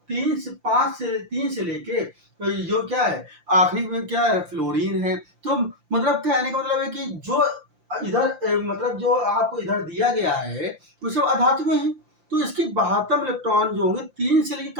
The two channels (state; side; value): late; left; 5.8 ms